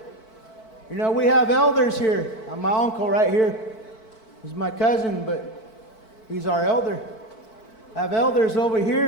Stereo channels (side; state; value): right; late; 4.5 ms